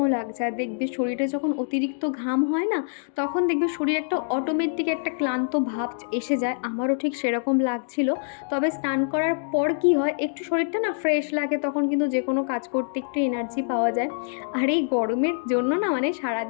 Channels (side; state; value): right; silent; digital silence